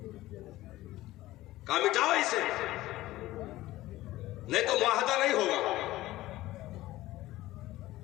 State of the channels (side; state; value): right; quieter; 16.6 dB